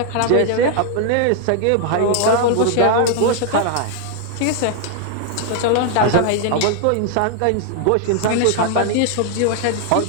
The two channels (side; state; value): both; different; correlation 0.00